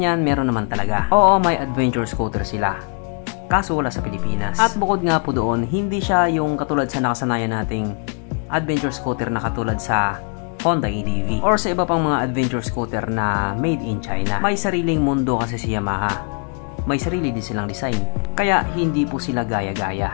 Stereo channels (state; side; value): quieter; right; 39.9 dB